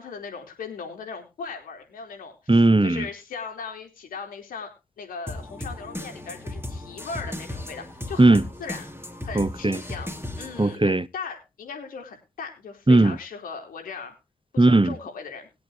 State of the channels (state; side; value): normal; both; correlation 0.85